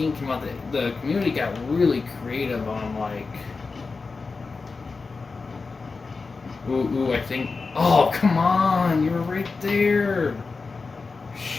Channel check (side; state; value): right; quieter; 4.3 dB